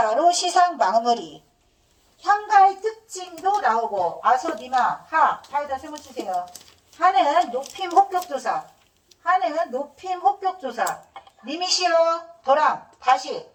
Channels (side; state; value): both; identical; correlation 1.00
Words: 시상 마무리. 향가의 특징도 나오고 아소니마 하에다 세모 치세요. 하는 높임 혹격조사. 하는 높임 혹격조사. 님이시여 도랑 다시